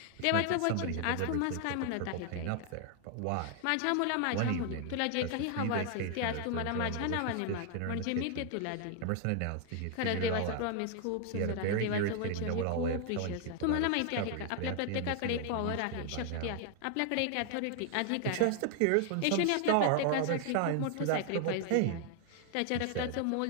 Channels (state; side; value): different; both; correlation 0.00